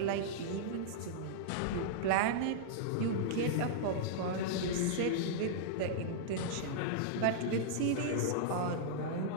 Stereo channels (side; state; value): both; different; correlation -0.02